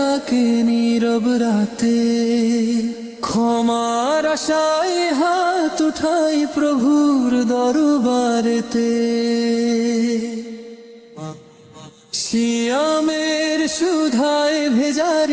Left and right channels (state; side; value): identical; both; correlation 1.00